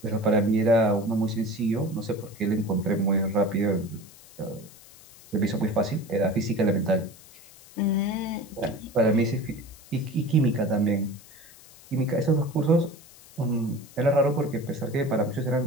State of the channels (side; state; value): left; noise; hiss, 22 dB below the sound